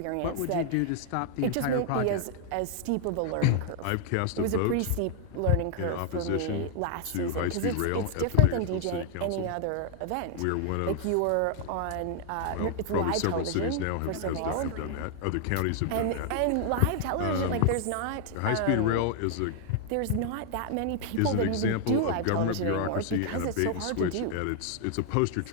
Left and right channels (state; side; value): different; both; correlation 0.00